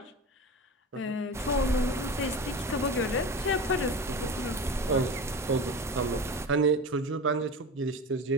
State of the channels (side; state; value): both; normal; correlation 0.30